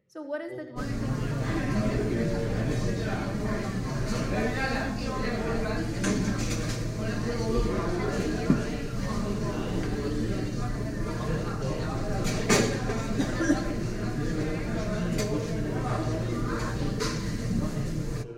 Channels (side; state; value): both; identical; correlation 1.00